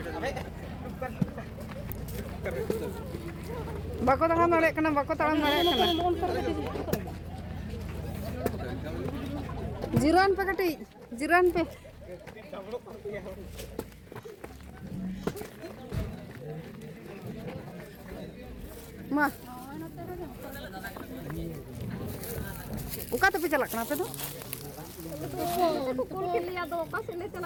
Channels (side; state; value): both; identical; correlation 1.00